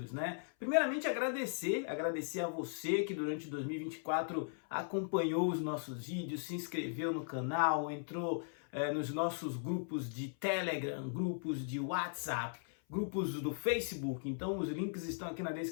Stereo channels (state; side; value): silent; right; 52 dB below the other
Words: né? Primeiramente agradecer a você que durante 2024 acompanhou os nossos vídeos, se inscreveu no canal, entrou nos nossos grupos de Telegram, grupos de WhatsApp, grupos do Facebook. Então os links estão aqui na